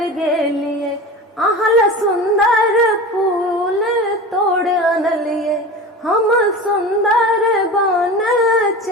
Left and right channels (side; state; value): both; normal; correlation 0.32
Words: गेलिए, आहल सुंदर फूल तोड़ अनलिए। हम सुंदर बन